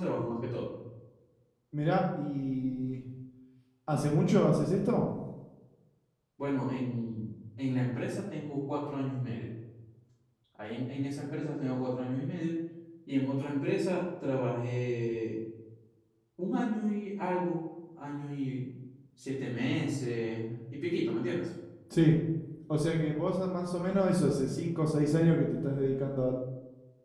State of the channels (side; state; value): both; identical; correlation 1.00